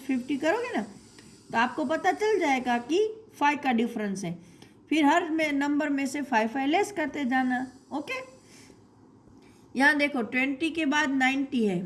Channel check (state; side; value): identical; both; correlation 1.00